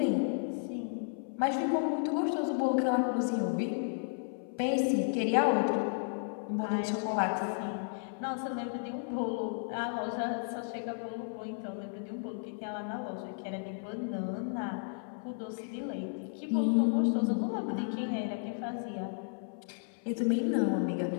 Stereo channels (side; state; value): right; silent; 56 dB below the other